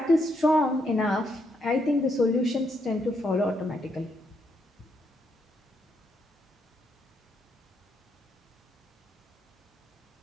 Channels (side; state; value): both; normal; correlation 0.77